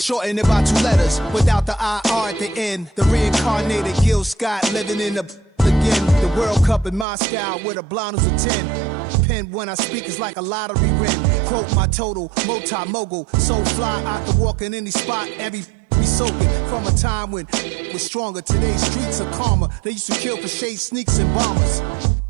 it by 2 letters. Without the IR at the end, the reincarnated Gil Scott living in the again. The World Cup in Moscow with a blonde who's a 10. Pen when I speak is like a lottery win. Quote my total, multi-mogul. So fly out to walk in any spot, every be soaking from a time when was stronger. Today's streets are calmer. They used to kill for shade sneaks and bombers.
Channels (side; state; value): left; drops out; at 7.1 s